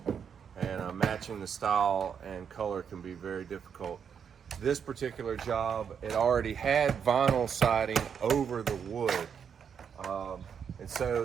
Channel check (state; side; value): quieter; left; 7.3 dB